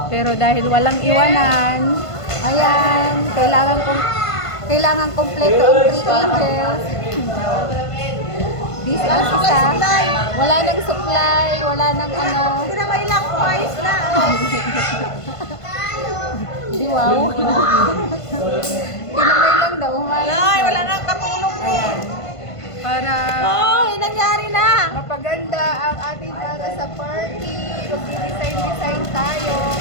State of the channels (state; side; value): late; right; 1.5 ms